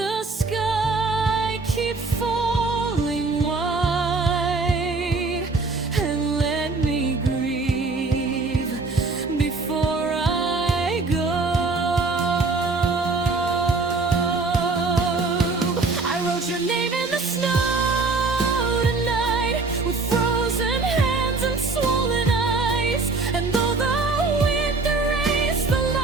sky keep falling white and let me grieve before I go. I wrote your name in the snow tonight with frozen hands and swollen eyes, and though the wind erased the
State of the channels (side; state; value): left; quieter; 3.8 dB